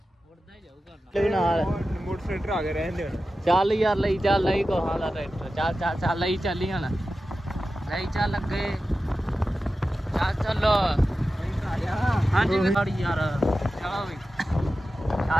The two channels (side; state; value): both; normal; correlation 0.93